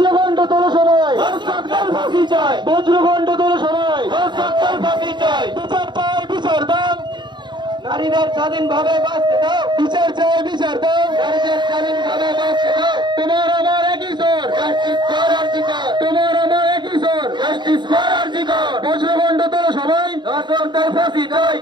তোলো সবাই, ধর্ষকদের ফাঁসি চাই, বজ্রখণ্ড তোলো সবাই, ধর্ষকদের ফাঁসি চাই। বিচার চাই, বিচার দাও, নারীদের স্বাধীনভাবে বাঁচতে দাও, বিচার চাই, বিচার দাও, নারীদের স্বাধীনভাবে বাঁচতে দাও। তোমার আমার একই সুর, জাস্টিস ফর আর্টিকেল, তোমার আমার একই সুর, জাস্টিস ফর আর্টিকেল। বজ্রখণ্ড তোলো সবাই, ধর্ষকদের ফাঁসি চাই,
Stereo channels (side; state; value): left; late; 0.22 ms